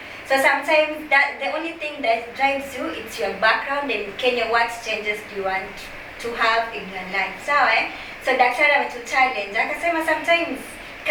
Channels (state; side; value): identical; both; correlation 1.00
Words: So sometimes that the only thing that drives you, it's your background, and Kenya, what changes do you want to have in your life. Sawa So daktari ametuchallenge akasema sometimes